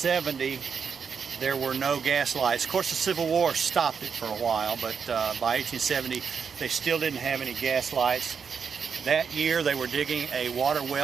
there were no gas lights. Of course, the Civil War stopped it for a while, but by 1870, they still didn't have any gas lights. That year, they were digging a water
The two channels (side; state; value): left; quieter; 6.4 dB